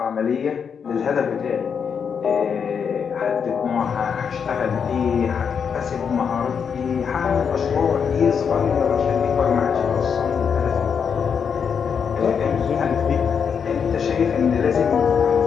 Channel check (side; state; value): right; quieter; 6.8 dB